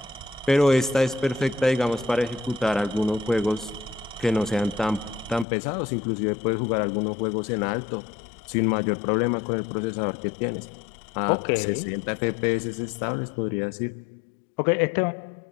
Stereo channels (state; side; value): drops out; right; at 5.5 s